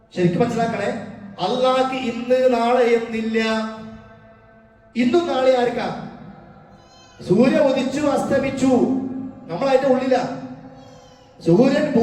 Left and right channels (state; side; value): identical; both; correlation 1.00